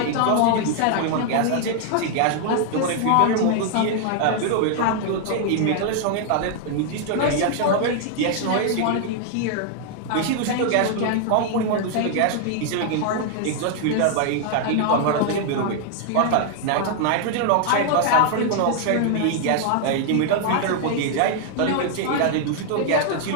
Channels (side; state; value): both; different; correlation 0.00